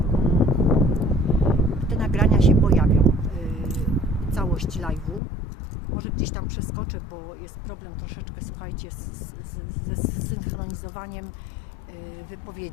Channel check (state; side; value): drops out; right; at 5.2 s